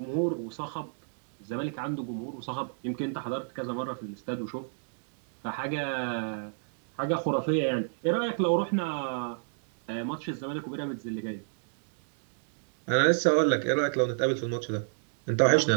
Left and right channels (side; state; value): left; silent; digital silence